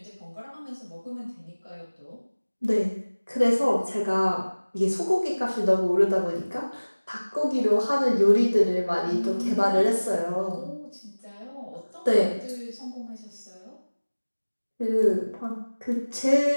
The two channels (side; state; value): both; inverted; correlation -1.00